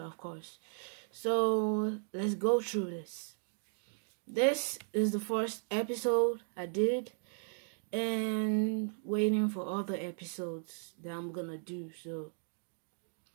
of course. So let's go through this. This is the first episode I did, and waiting for other episodes that I'm gonna do. So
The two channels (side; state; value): left; silent; 54 dB below the other